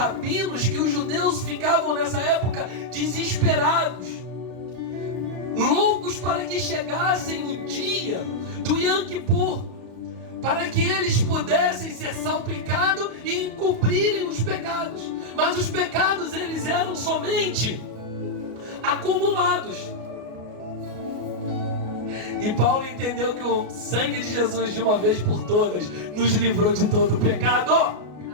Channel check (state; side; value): late; left; 33 ms